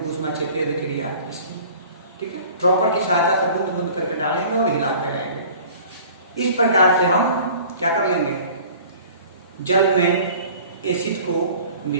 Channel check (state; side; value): inverted; both; correlation -0.47